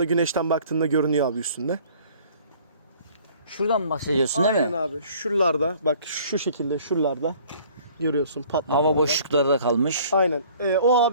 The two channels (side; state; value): both; inverted; correlation -0.53